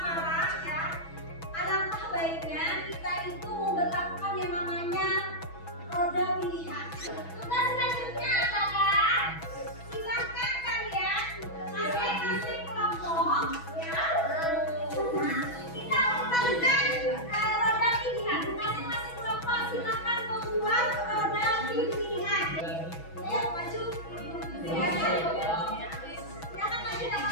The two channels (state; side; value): late; right; 6.1 ms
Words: ya, alangkah baiknya kita itu memperlakukan yang namanya roda pilihan. Tugas selanjutnya adalah silakan kalian masing-masing kelompok ya. Kita lakukan roda pilihan. Masing-masing kelompok silakan membuat roda pilihan. Ayo maju. Silakan maju tidak